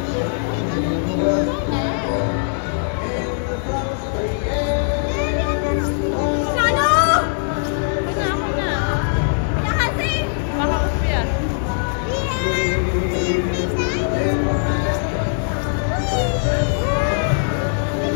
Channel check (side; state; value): right; silent; digital silence